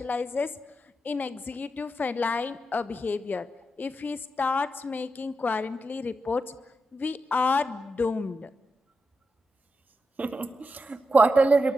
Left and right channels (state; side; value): normal; both; correlation 0.87